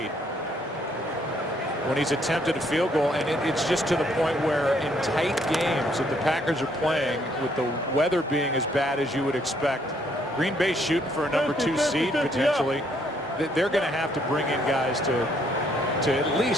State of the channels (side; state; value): both; normal; correlation 0.69